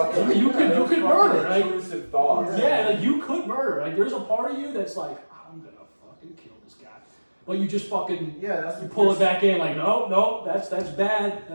You could those murder. fucking intrusive thoughts. Yeah, like you could murder. Like there's a part of you that's like, I'm gonna fucking kill this guy. But you just fucking you pull it back in like, no, that's bad.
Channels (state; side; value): inverted; both; correlation -1.00